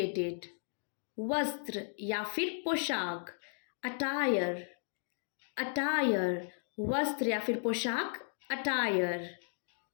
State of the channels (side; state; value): right; silent; digital silence